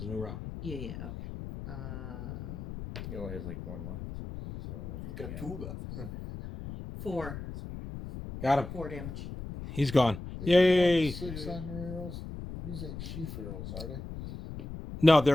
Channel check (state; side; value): noise; left; rumble, 9 dB below the sound